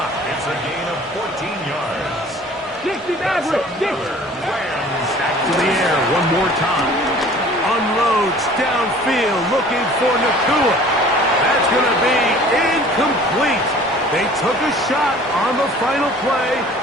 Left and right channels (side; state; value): both; normal; correlation 0.49